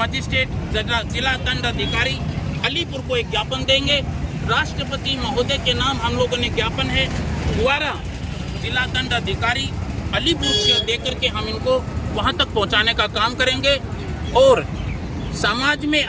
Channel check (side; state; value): both; identical; correlation 1.00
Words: जिला दंड अधिकारी अलीपुर को एक ज्ञापन देंगे। राष्ट्रपति महोदय के नाम हम लोगों ने ज्ञापन है द्वारा जिला दंड अधिकारी अलीपुर से देकर के हम इनको वहाँ तक पहुँचाने का काम करेंगे। और समाज में